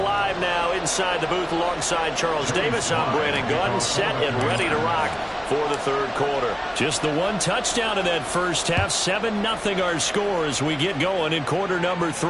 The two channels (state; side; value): identical; both; correlation 1.00